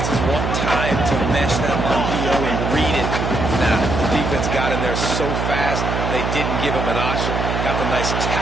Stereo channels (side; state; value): right; noise; hum, 1 dB below the sound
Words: want time to mesh that RPO and read it. Now, the defense got in there so fast, they didn't give him an option. Got the nice